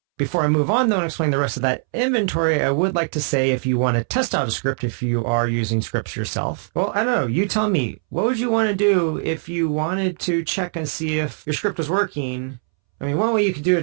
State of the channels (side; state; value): left; silent; 65 dB below the other